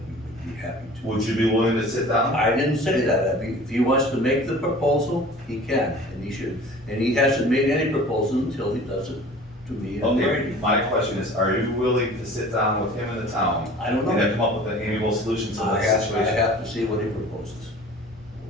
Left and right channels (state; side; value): normal; both; correlation 0.44